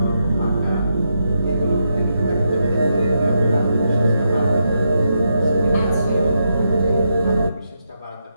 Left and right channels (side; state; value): both; inverted; correlation -0.83